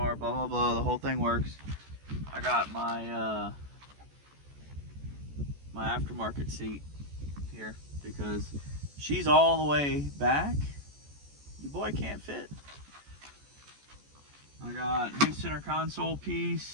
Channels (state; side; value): late; left; 14 ms